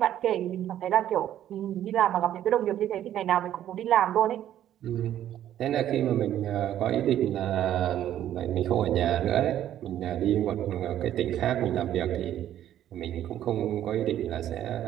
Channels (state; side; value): quieter; left; 11.6 dB